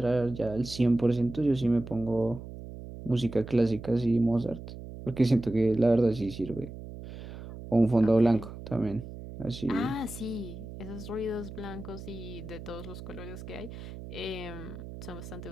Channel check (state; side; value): noise; right; hum, 12 dB below the sound